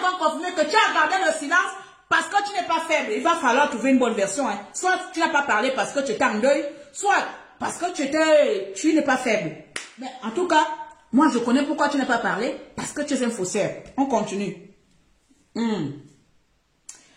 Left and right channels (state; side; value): identical; both; correlation 1.00